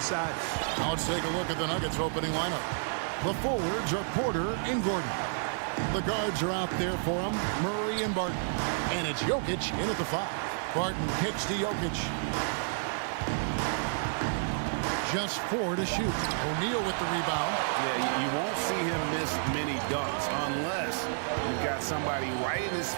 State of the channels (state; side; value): silent; left; 57 dB below the other